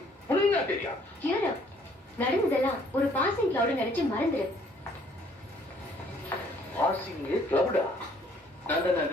புரியுதா? தெரியா நடந்ததெல்லாம் ஒரு பாசிங் கிளவுட் நினைச்சு மறந்துரு. பாசிங் கிளவுடா?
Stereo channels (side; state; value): both; normal; correlation 0.61